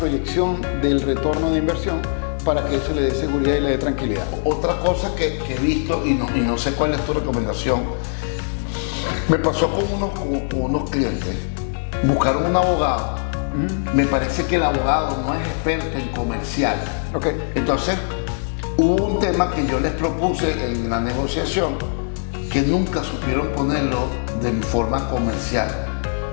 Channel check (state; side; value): silent; right; digital silence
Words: del retorno de inversión para que eso le dé seguridad y le dé tranquilidad. Otra cosa que he visto, y no sé cuál es tu recomendación, me pasó con unos clientes, buscaron un abogado, me parece que el abogado no es experto en comercial. Okay. Entonces, hubo un tema que yo les propuse en la negociación, que nunca supieron ponerlo de forma comercial,